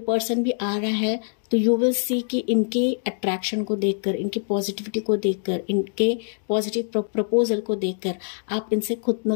भी आ रहा है तो यू विल सी कि इनके अट्रैक्शन को देखकर, इनकी पॉजिटिविटी को देखकर, इनके पॉजिटिव प्रपोजल को देखकर आप इनसे खुद न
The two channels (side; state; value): right; silent; digital silence